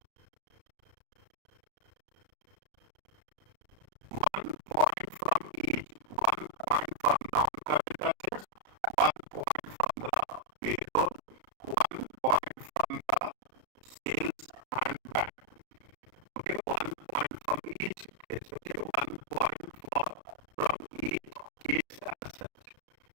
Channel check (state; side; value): late; left; 33 ms